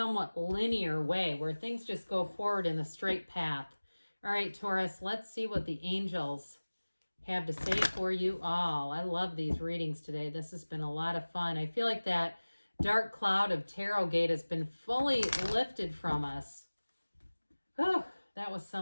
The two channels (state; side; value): inverted; both; correlation -1.00